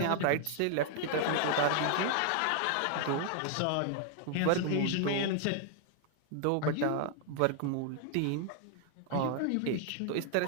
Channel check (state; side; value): different; both; correlation 0.00